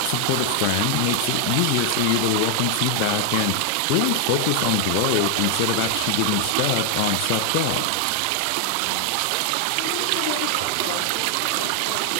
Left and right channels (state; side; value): different; both; correlation 0.00